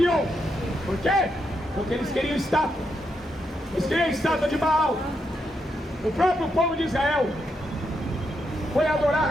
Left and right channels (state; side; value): normal; both; correlation 0.81